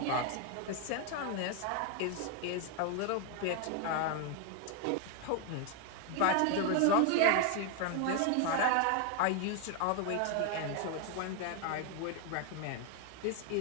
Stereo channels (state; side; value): different; both; correlation 0.01